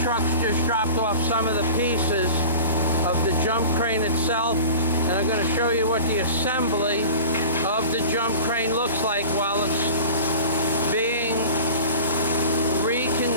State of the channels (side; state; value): both; inverted; correlation -0.38